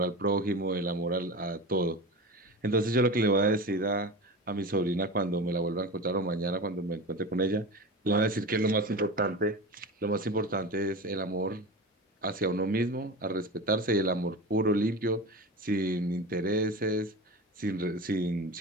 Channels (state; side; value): normal; both; correlation 0.29